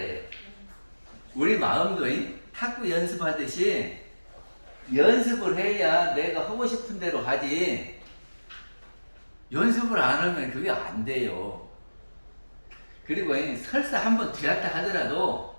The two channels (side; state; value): both; inverted; correlation -1.00